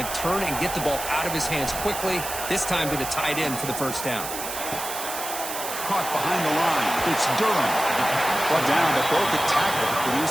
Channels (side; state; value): right; noise; hiss, 7 dB below the sound